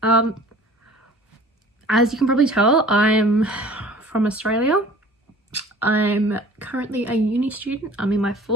as you can probably tell, I'm from Australia. I'm currently a uni student. I'm in my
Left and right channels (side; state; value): both; normal; correlation 0.47